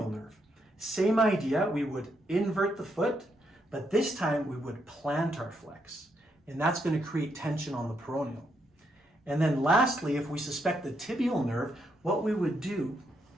nerve. Same idea, we would invert the foot, but this time we would plantar flex. And that's going to create tension on the peroneal. And then lastly, if we suspect the tibial nerve, what we would do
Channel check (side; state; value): both; normal; correlation 0.78